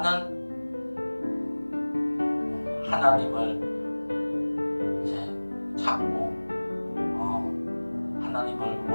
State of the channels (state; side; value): inverted; both; correlation -1.00